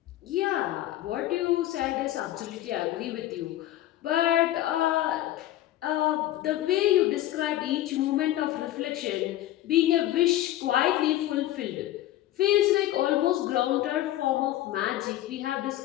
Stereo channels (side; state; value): right; quieter; 14.1 dB